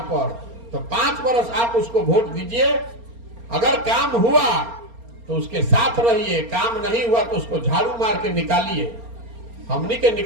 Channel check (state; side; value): late; left; 4.3 ms